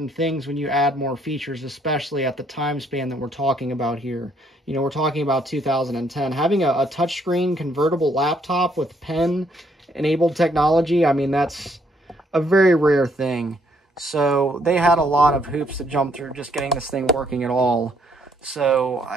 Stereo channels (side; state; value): both; normal; correlation 0.69